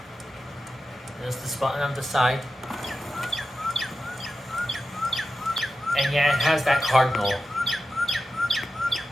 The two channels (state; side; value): normal; both; correlation 0.92